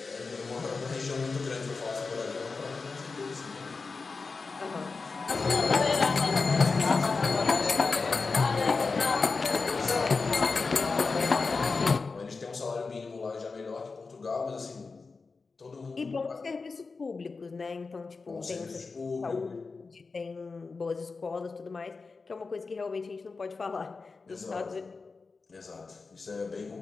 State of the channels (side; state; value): right; quieter; 4.3 dB